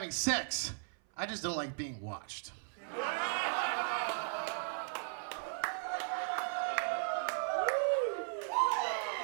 sex. I just don't like being watched.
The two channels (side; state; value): left; silent; 53 dB below the other